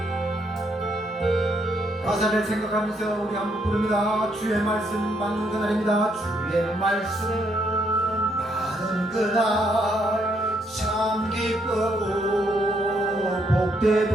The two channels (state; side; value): normal; both; correlation 0.73